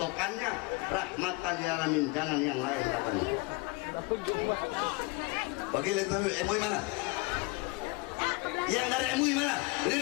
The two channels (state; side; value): quieter; right; 24.9 dB